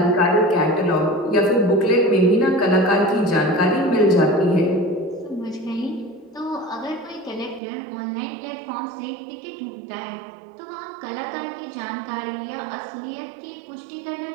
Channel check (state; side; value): drops out; left; at 7.6 s